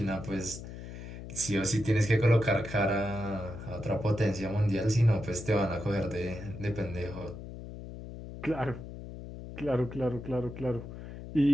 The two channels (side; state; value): left; noise; hum, 11 dB below the sound